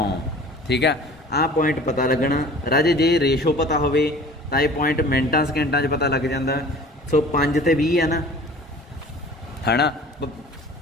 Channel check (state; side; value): normal; both; correlation 0.45